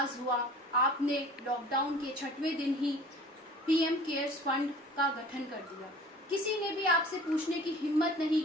हुआ, आपने लॉकडाउन के 6वें दिन ही पीएम केयर्स फंड का गठन कर दिया। किसी ने भी आपसे पूछने की हिम्मत नहीं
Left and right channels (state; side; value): normal; both; correlation 0.45